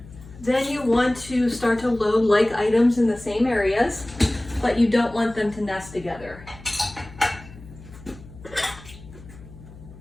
Then you want to start to load like items in the same areas, but you don't want them to nest together.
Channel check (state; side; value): noise; left; hum, 18 dB below the sound